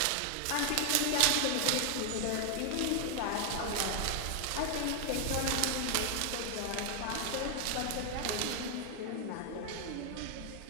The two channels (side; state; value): both; different; correlation 0.00